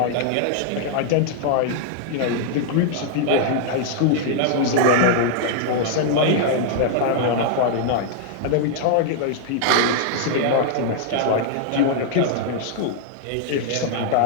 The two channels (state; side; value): different; both; correlation -0.01